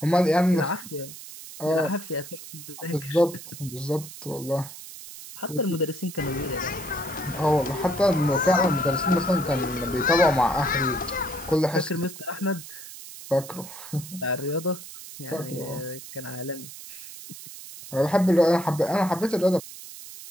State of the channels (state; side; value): noise; right; hiss, 14 dB below the sound